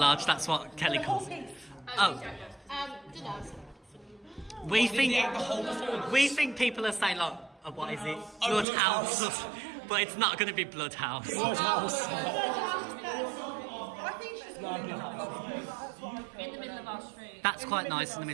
that's what Kelly The whole calls it. piece. Oh, Dunno. we think people are saying like, what is it? Bloodhouse. But it's not going to be Bloodhouse. I think she's calling it In the middle of our street. That's quite nice in the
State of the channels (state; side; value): drops out; left; at 8.7 s